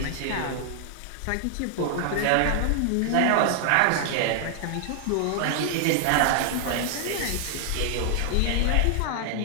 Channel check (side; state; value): both; different; correlation 0.00